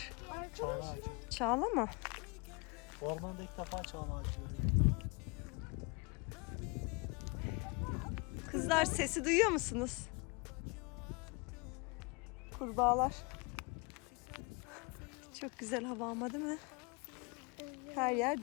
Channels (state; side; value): quieter; right; 30.0 dB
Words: Çağla ağacı. Çağla mı? Ormanda ilk defa çağla ağacı görüyorum. Kızlar sesi duyuyor musunuz? Kurbağalar. Çok güzel hava ama değil mi? Her yer